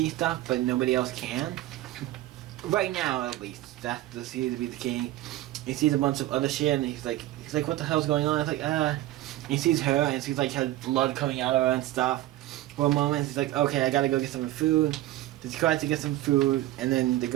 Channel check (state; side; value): quieter; left; 15.5 dB